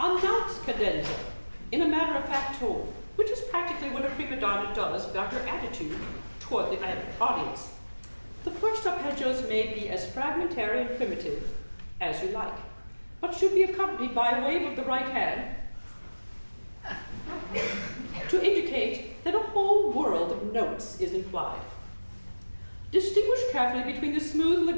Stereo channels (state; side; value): inverted; both; correlation -1.00